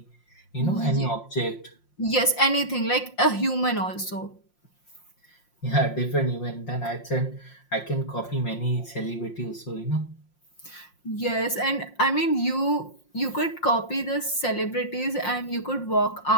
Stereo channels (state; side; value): late; right; 5.7 ms